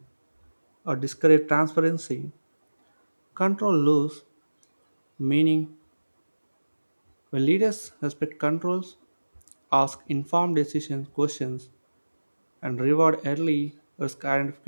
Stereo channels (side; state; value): both; inverted; correlation -1.00